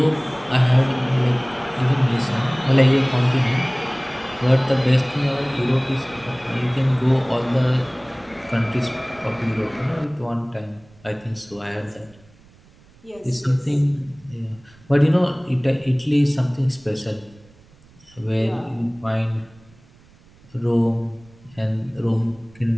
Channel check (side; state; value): right; noise; rumble, 27 dB below the sound